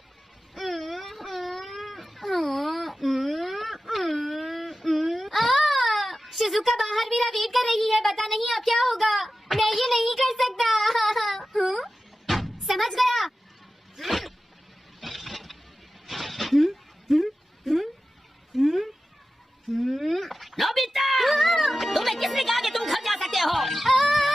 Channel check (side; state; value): both; normal; correlation 0.94